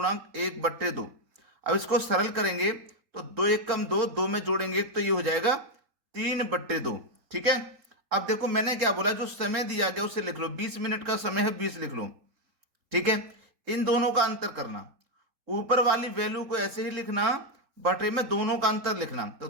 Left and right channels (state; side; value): late; left; 3.8 ms